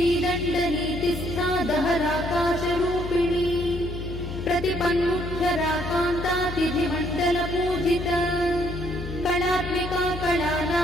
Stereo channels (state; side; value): noise; left; hum, 8 dB below the sound